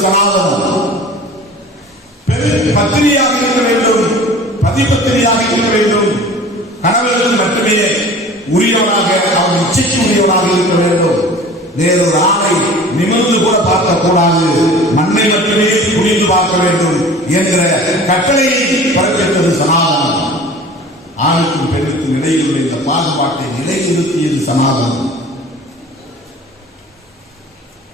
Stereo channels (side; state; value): both; normal; correlation 0.43